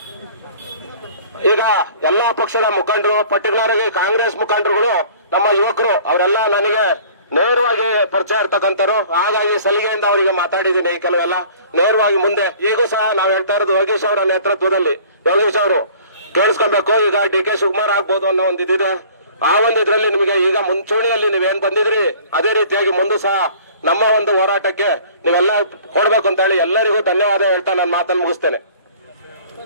ಈಗ ಎಲ್ಲಾ ಪಕ್ಷದ ಮುಖಂಡರು, ಪರ್ಟಿಕ್ಯುಲರ್ ಆಗಿ ಕಾಂಗ್ರೆಸ್ ಮುಖಂಡರುಗಳು, ನಮ್ಮ ಯುವಕರು, ಅವರೆಲ್ಲ ನನಗೆ ನೇರವಾಗಿ ಪರಿಚಯ ಇರ್ತಕ್ಕಂಥವ್ರು. ಹಾಗಾಗಿ ಸಲಿಗೆಯಿಂದ ಅವರಿಗೆ ಮಾತಾಡಿದ್ದೀನಿ. ಕೆಲವೆಲ್ಲ ನೇರವಾಗಿ ಮುಂದೆ ಈಗೂ ಸಹ ನಾವು ಹೇಳ್ತಾ ಇರೋದು ಯೋಗೇಶ್ ಅವರ ನೇತೃತ್ವದಲ್ಲಿ. ಯೋಗೇಶ್ ಅವರು ಕೇಳಿಸ್ಕೊಬೇಕು. ಈಗ DK ಶಿವಕುಮಾರ್ ಆಗ್ಬೋದು ಅನ್ನೋ ಒಂದು ಇದಿದೆ. ಆ ಒಂದು ಇದ್ರಲ್ಲಿ ನಿಮಗೆ ಈಗ ಮುಂಚೂಣಿಯಲ್ಲಿ ನೀವೇನ್ ಬಂದಿದ್ರಿ ಅದೇ ರೀತಿಯಾಗಿ ಮುಂದೆ ಸಹ ನಮ್ಮ ಒಂದು ಹೋರಾಟಕ್ಕೆ ನೀವೆಲ್ಲ ಕೊಡ್ಬೇಕು ಅಂತ ಹೇಳಿ ಎಲ್ಲರಿಗೂ ಧನ್ಯವಾದ ಹೇಳ್ತಾ ನಾನು ಮಾತನ್ನು ಮುಗಿಸ್ತೇನೆ.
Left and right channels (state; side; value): inverted; both; correlation -0.50